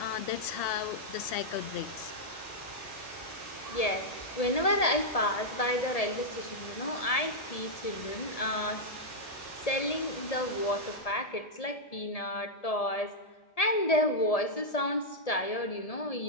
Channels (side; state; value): right; late; 1.7 ms